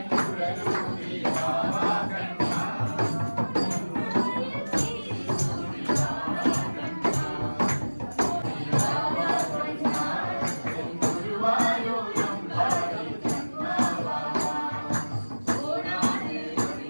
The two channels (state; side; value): inverted; both; correlation -1.00